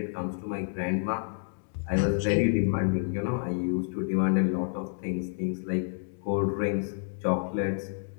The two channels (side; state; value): right; silent; digital silence